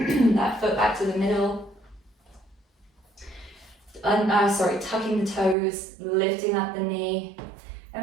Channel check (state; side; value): drops out; left; at 5.6 s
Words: that foot back to the middle. Tucking the toes, lifting up the knee.